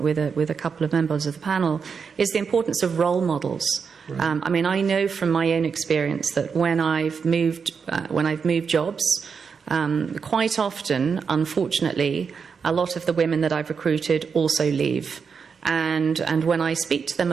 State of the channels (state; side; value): quieter; left; 5.9 dB